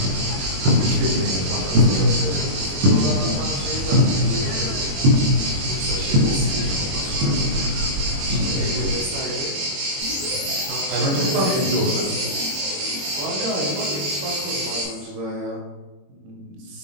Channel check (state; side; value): late; left; 21 ms